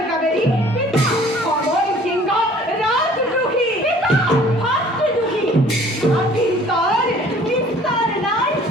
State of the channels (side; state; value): both; normal; correlation 0.53